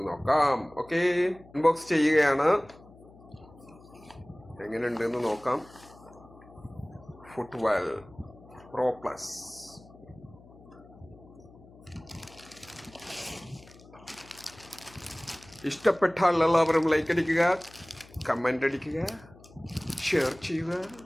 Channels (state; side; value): noise; left; hum, 22 dB below the sound